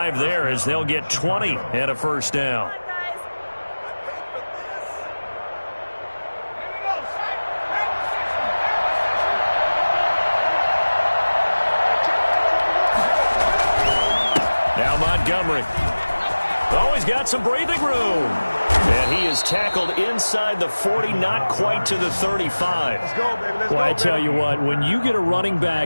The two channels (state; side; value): inverted; both; correlation -1.00